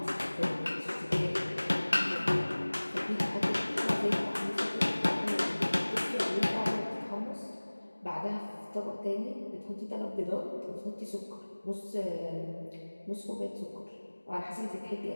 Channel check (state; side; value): inverted; both; correlation -1.00